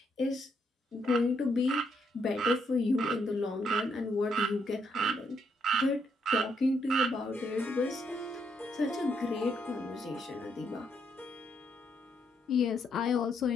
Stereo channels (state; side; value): normal; both; correlation 0.74